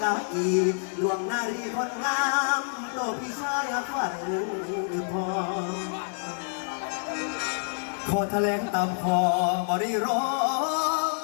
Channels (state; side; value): silent; right; 60 dB below the other